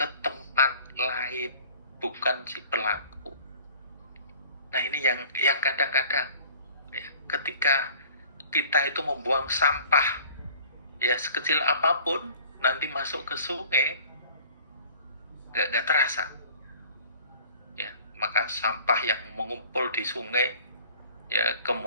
tempat lain, bukan si pelaku. Nah, ini yang kadang-kadang ya, ketika kita itu membuang sampah ya sekecil apapun, nanti masuk ke sungai nggak terasa. Ya, maka sampah yang mengumpul di sungai ya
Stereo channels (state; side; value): inverted; both; correlation -0.49